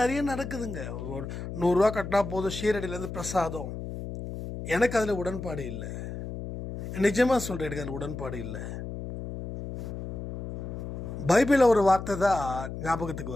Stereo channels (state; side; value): noise; left; hum, 8 dB below the sound